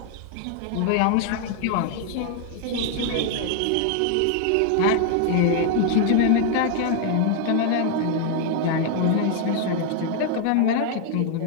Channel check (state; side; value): different; both; correlation 0.00